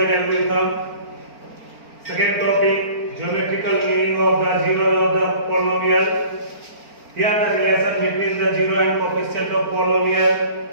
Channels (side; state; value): left; late; 4.4 ms